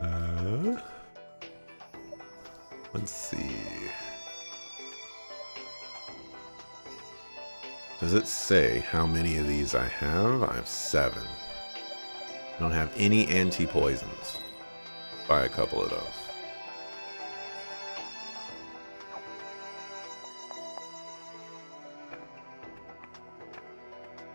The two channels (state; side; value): inverted; both; correlation -1.00